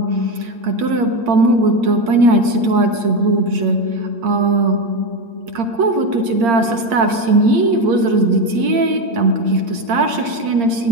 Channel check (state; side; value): late; left; 8.7 ms